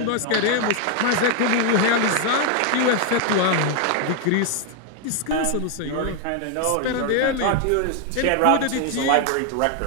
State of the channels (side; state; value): both; different; correlation 0.01